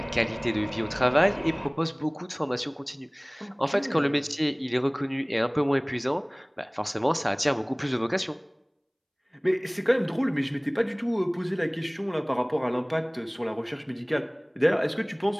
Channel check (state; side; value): identical; both; correlation 1.00